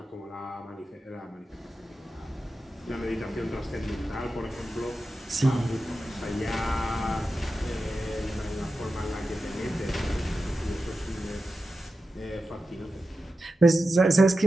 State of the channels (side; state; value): both; normal; correlation 0.91